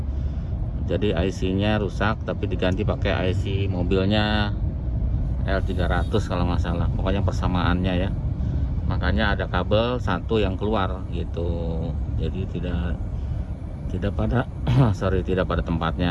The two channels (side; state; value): both; identical; correlation 1.00